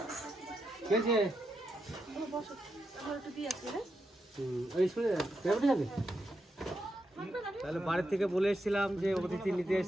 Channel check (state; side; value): normal; both; correlation 0.84